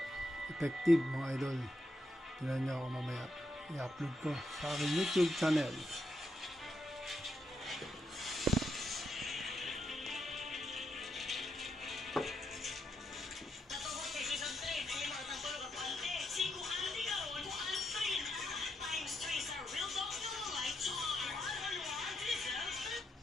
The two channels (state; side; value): normal; both; correlation 0.81